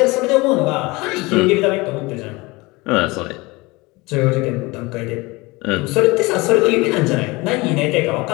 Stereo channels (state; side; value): quieter; right; 23.4 dB